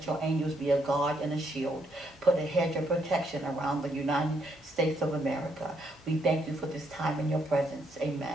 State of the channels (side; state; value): both; normal; correlation 0.74